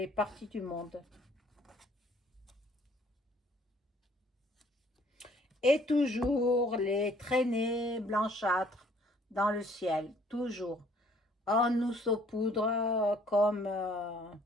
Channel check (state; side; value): normal; both; correlation 0.60